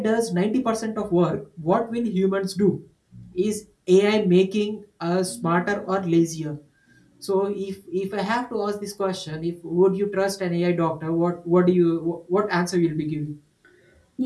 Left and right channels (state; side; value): identical; both; correlation 1.00